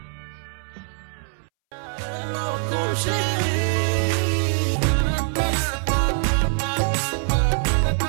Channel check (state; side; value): silent; left; 63 dB below the other